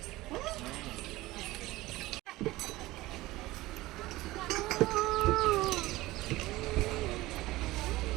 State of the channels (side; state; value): left; quieter; 18.5 dB